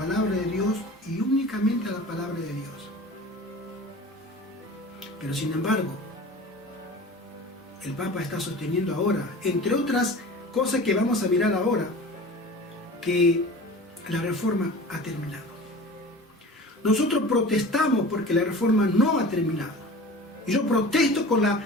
de Dios y únicamente a la palabra de Dios. Pero sin embargo, el Papa está sosteniendo ahora, entre otras cosas que vamos a mirar ahora, que la reforma ha terminado. Nosotros protestamos porque la reforma no ha terminado. Y yo protesto con la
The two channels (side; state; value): both; normal; correlation 0.38